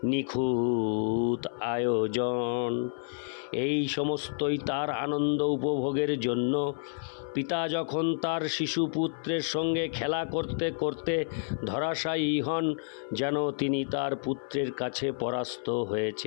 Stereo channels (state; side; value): silent; right; 56 dB below the other